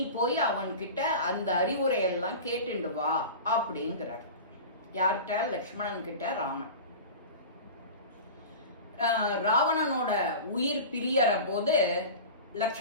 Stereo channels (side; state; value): both; inverted; correlation -0.33